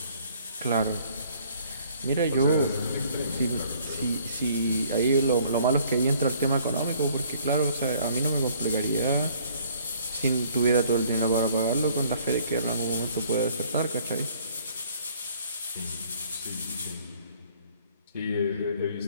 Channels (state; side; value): inverted; both; correlation -0.59